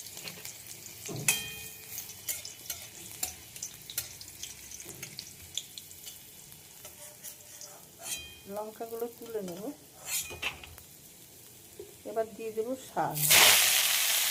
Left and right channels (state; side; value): identical; both; correlation 1.00